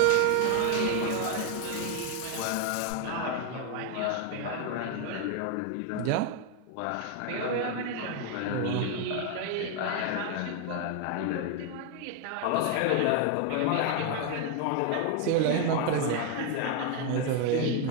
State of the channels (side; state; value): both; different; correlation 0.01